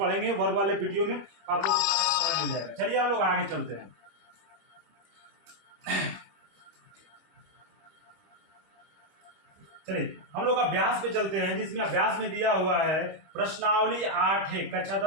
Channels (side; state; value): left; late; 26 ms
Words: वर्ग वाले वीडियो में आपको सारा मिल जाएगा। चलिए हम लोग आगे चलते हैं। चलिए हम लोग अभ्यास पे चलते हैं, जिसमें अभ्यास में दिया हुआ है प्रश्नावली 8 है, कक्षा